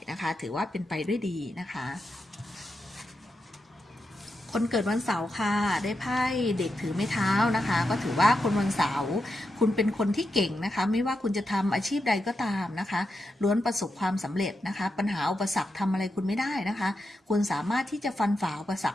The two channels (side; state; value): both; normal; correlation 0.87